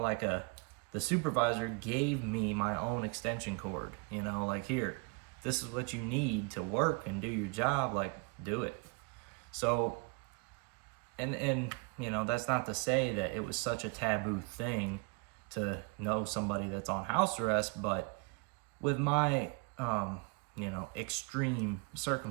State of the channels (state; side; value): quieter; left; 32.1 dB